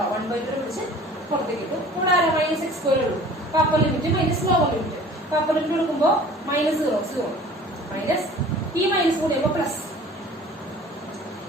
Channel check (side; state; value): both; normal; correlation 0.46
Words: 1/2 പിടിച്ച് പുറത്തേക്ക് ഇട്ടു. ഇവിടെ ആരാ മൈനസ് എക്സ് സ്ക്വയർ ഉള്ളൂ. അപ്പൊ upper limit minus lower limit. അപ്പൊ അപ്പർ ലിമിറ്റ് കൊടുക്കുമ്പോൾ -0 മൈനസ് ഈ മൈനസ് കൂടി ആകുമ്പോൾ പ്ലസ്